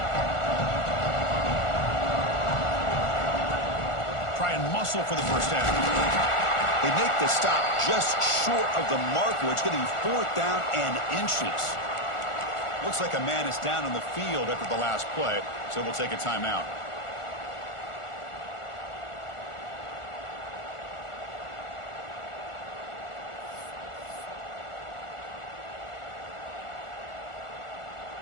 Try and muscle for the first down. They make the stop just short of the marker. It's getting fourth down and inches. Looks like a man is down on the field after the last play, so we'll take a timeout.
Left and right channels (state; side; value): late; right; 1.4 ms